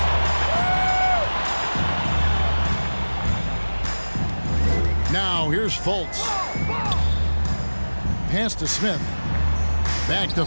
Now here's Fultz. Pass to Smith. Back to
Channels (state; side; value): inverted; both; correlation -1.00